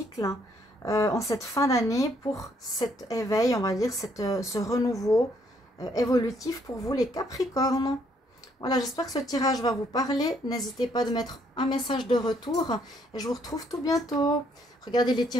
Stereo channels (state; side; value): normal; both; correlation 0.69